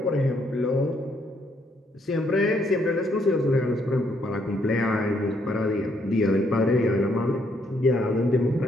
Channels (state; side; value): normal; both; correlation 0.71